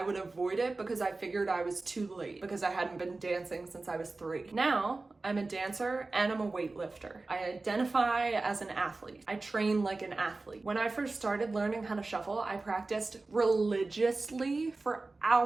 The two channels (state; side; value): quieter; left; 3.5 dB